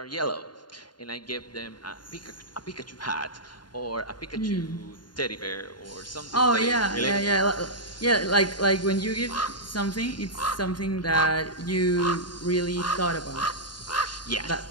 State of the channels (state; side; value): late; right; 0.71 ms